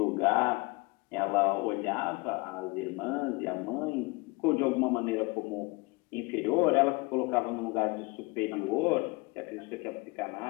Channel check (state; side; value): quieter; right; 25.9 dB